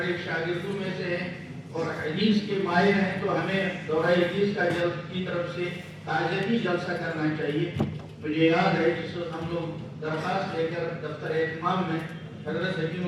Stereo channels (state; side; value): identical; both; correlation 1.00